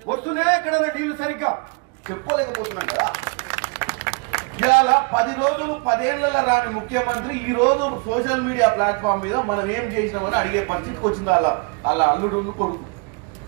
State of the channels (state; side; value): quieter; left; 32.7 dB